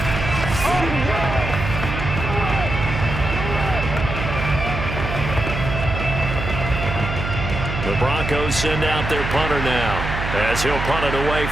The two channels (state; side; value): noise; right; hum, 4 dB below the sound